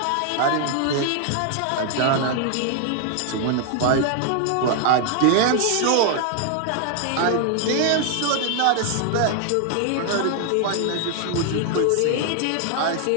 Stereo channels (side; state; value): both; different; correlation 0.00